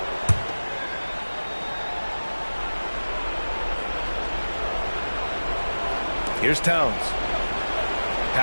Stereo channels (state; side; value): inverted; both; correlation -1.00